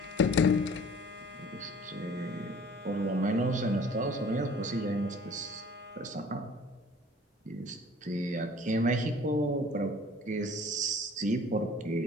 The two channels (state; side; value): normal; both; correlation 0.50